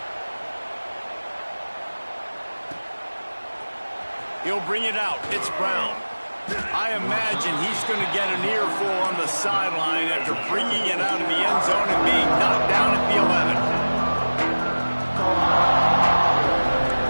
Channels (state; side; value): inverted; both; correlation -1.00